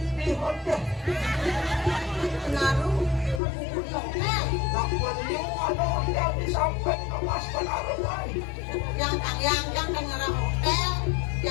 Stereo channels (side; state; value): right; drops out; at 3.4 s